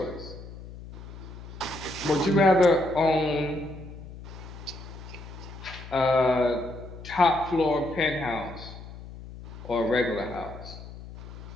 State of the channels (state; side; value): noise; left; hum, 14 dB below the sound